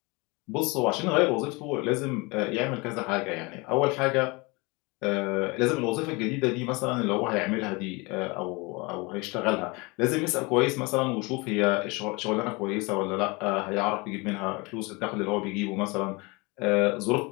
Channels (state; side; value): quieter; right; 26.6 dB